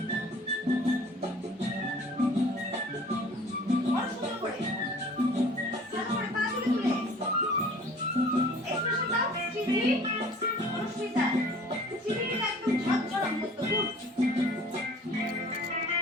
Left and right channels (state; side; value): normal; both; correlation 0.49